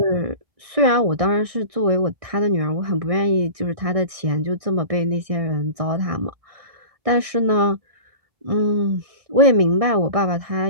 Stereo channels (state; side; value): late; left; 1.6 ms